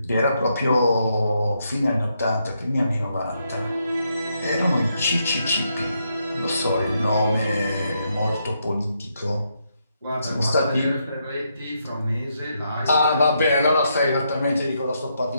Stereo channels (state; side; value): inverted; both; correlation -0.79